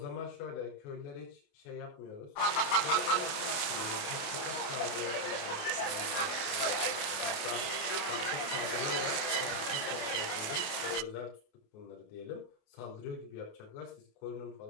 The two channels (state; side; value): late; right; 28 ms